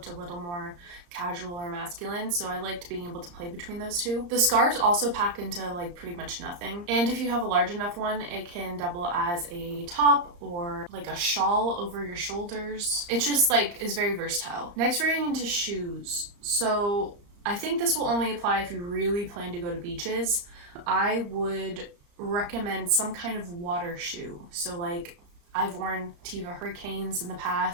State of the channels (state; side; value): late; left; 34 ms